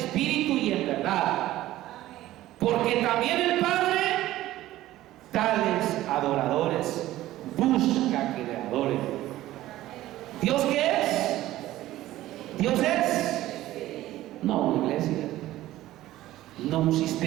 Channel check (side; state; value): left; quieter; 15.2 dB